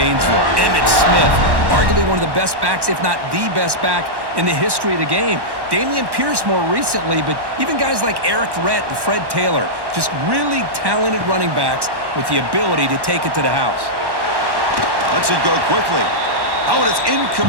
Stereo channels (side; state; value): left; late; 1.1 ms